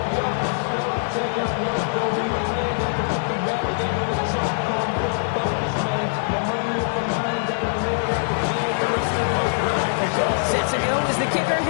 Set to go is the kicker,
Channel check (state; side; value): silent; right; 60 dB below the other